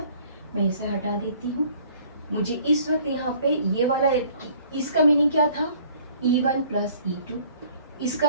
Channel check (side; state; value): both; inverted; correlation -0.56